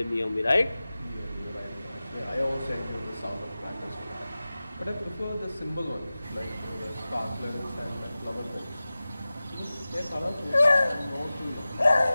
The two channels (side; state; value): both; inverted; correlation -0.97